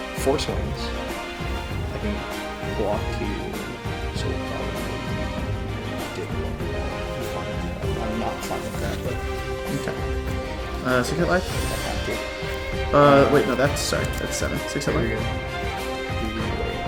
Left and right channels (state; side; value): identical; both; correlation 1.00